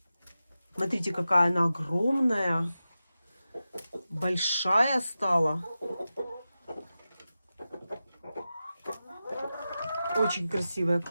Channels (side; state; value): both; inverted; correlation -0.93